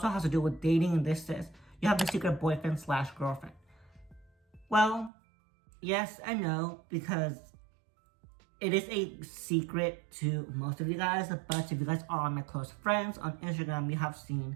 has to do with dating, and this says, you have a secret boyfriend/girlfriend. Well, yes and no, because it is a secret to most of you guys, but if you guys are my close friends on Instagram, you have seen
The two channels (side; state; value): left; drops out; at 5.1 s